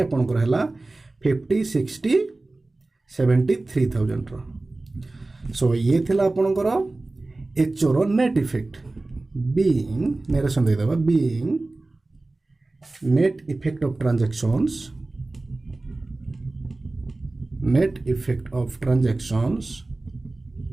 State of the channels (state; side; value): quieter; left; 3.1 dB